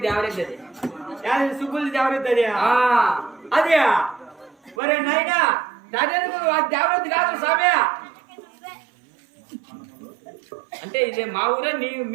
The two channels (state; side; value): drops out; left; at 4.8 s